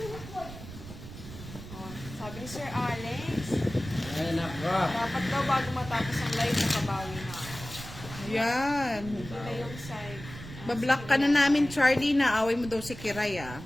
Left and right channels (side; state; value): right; noise; rumble, 13 dB below the sound